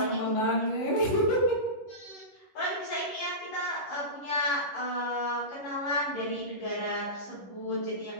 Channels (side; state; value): right; late; 11 ms